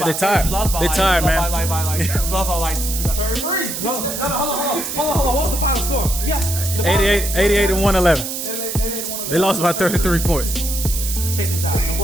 by tired. You lost by They tired, man. You lost by like 33. Hold on. What's the final score? Yeah. 88 and 111. They lost by 33 points. Check this out. The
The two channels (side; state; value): right; noise; hiss, 5 dB below the sound